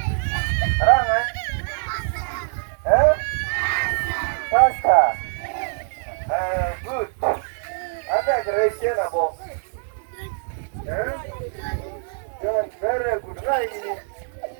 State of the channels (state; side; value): silent; left; 59 dB below the other